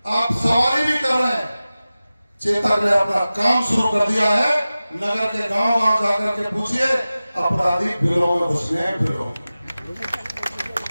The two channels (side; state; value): both; inverted; correlation -0.96